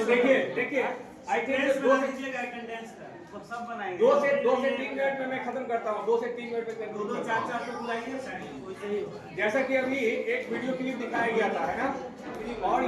देखिए आई थिंक 2 से 3 मिनट में मैं खत्म करता हूँ. 2 से 3 मिनट में 2-4 पे बुलाइए. जैसा कि अभी एक वीडियो क्लिप दिखाया गया था, है ना, और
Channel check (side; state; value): both; identical; correlation 1.00